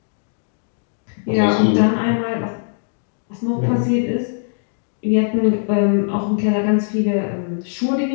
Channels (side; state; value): right; silent; digital silence